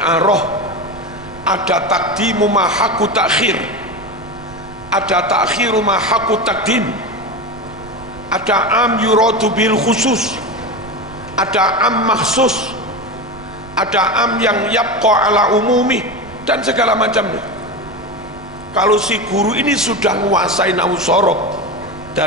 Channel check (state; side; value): noise; right; rumble, 20 dB below the sound